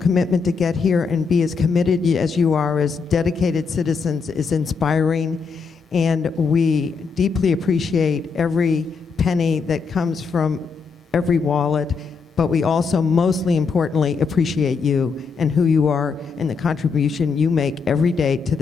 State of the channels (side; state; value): right; quieter; 5.2 dB